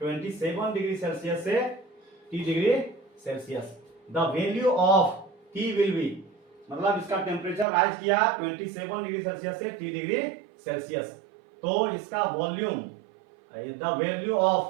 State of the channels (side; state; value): left; drops out; at 7.7 s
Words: डिग्री सेल्सियस से 30 degree Celsius. The value of T will be, मतलब इसका टेम्परेचर राइज किया 27 डिग्री सेल्सियस से 30 डिग्री सेल्सियस, तो इसका volume, the value